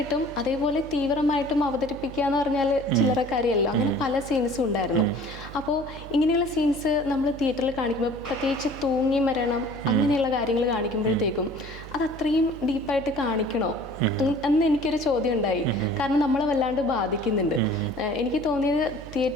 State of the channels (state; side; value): noise; right; hum, 15 dB below the sound